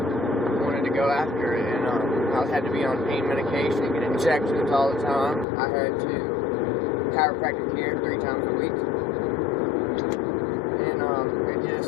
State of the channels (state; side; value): drops out; right; at 5.5 s